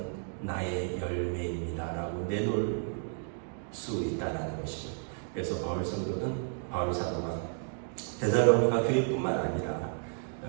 나의 열매입니다 라고 내놓을 수 있다는 것입니다. 그래서 바울 사도가 데살로니가 교회뿐만 아니라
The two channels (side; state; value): left; silent; 56 dB below the other